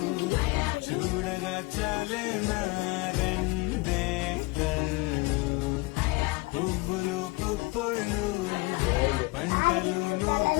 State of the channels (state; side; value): quieter; right; 23.8 dB